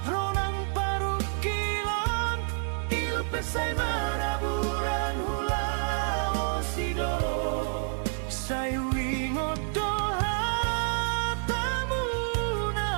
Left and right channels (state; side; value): silent; left; 58 dB below the other